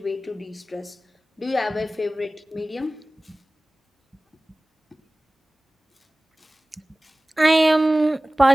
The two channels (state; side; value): normal; both; correlation 0.98